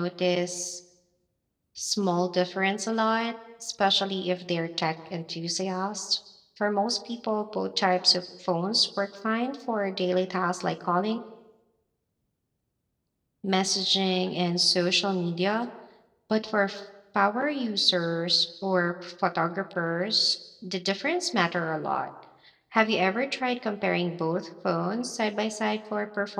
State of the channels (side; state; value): both; identical; correlation 1.00